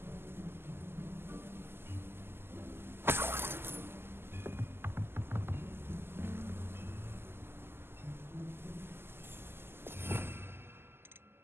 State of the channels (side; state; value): left; late; 0.11 ms